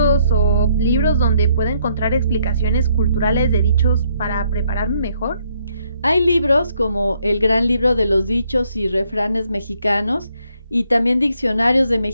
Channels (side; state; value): both; inverted; correlation -0.71